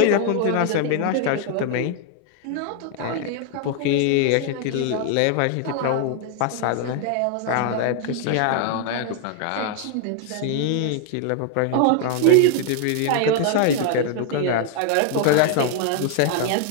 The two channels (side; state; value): both; different; correlation 0.00